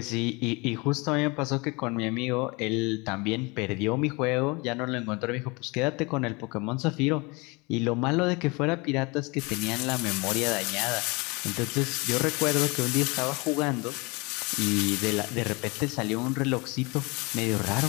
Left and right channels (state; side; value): quieter; right; 27.0 dB